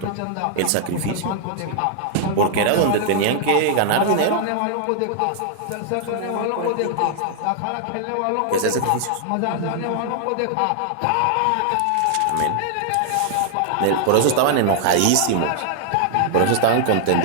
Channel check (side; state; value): both; different; correlation 0.00